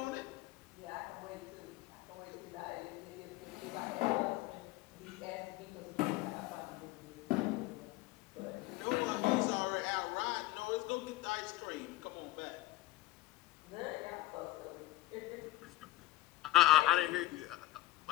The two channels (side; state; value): right; quieter; 17.1 dB